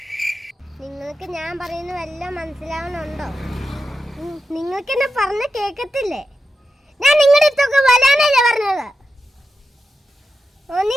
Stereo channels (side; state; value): both; normal; correlation 0.90